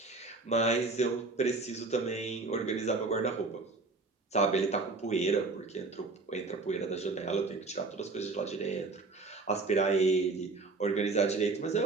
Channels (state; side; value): quieter; left; 3.7 dB